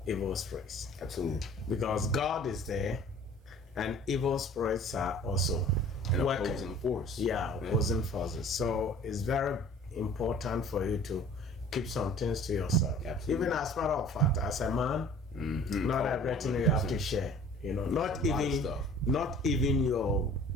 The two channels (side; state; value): both; normal; correlation 0.48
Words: evil spirits. Absolutely. Because God is there, and evil spirits are also an opposing force. Yeah, opposing forces. So it's very important for you to keep some things to yourself. Absolutely. Even as a matter of fact, as a man, not everything you have to share. You know, not even your.